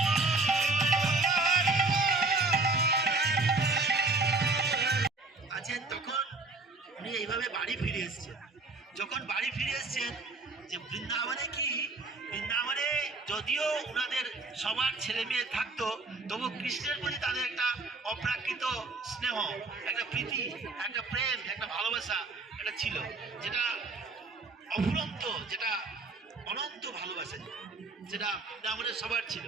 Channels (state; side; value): quieter; left; 3.5 dB